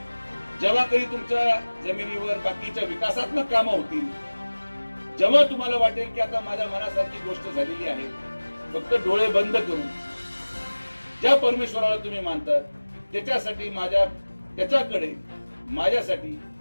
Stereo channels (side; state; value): both; inverted; correlation -1.00